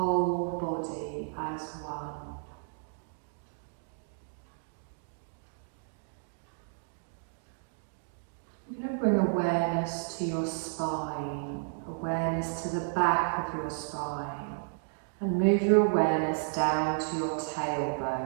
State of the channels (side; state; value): left; silent; digital silence